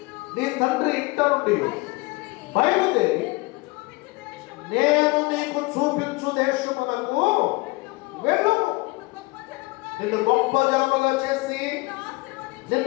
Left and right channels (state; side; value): quieter; right; 24.7 dB